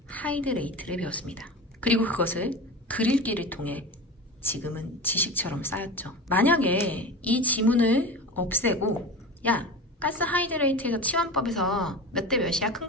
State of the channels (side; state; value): both; normal; correlation 0.29